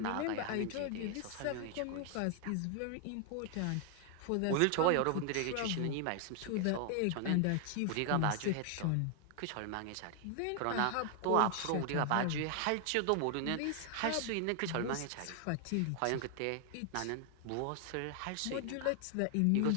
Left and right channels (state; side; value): different; both; correlation 0.00